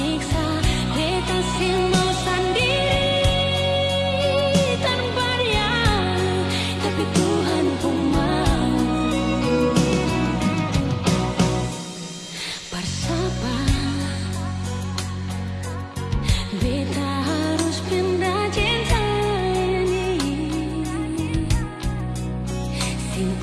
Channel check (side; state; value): both; identical; correlation 1.00